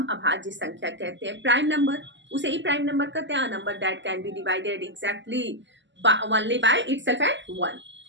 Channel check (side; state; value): left; late; 0.54 ms